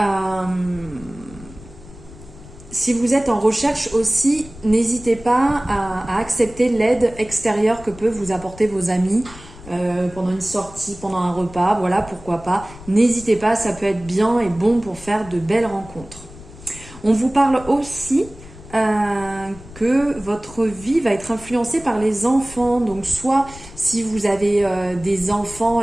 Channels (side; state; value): left; noise; rumble, 18 dB below the sound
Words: si vous êtes en recherche aussi, n'hésitez pas à accepter l'aide extérieure que peuvent vous apporter vos amis pendant une sortie, pendant un repas, voilà, pourquoi pas. N'hésitez pas, ça peut être bien et bon pour faire de belles rencontres. On vous parle aussi que votre vie va être influencée par les enfants. Donc soit si vous avez des enfants